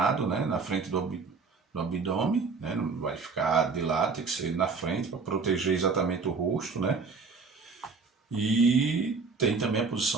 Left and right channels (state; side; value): quieter; left; 4.6 dB